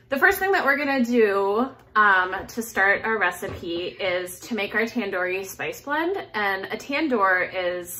the first thing that we're gonna do to start our recipe is to make our tandoori spice blend. And a tandoor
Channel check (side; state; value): both; identical; correlation 1.00